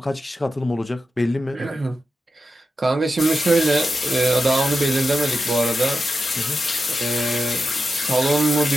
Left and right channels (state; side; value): normal; both; correlation 0.89